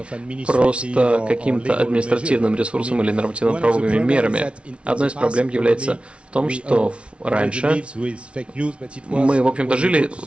просто каким-то административным ресурсом или нормативно-правовыми мерами. Одной из проблем является в том, что раньше мы, в общем-то, жили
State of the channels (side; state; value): left; late; 0.060 ms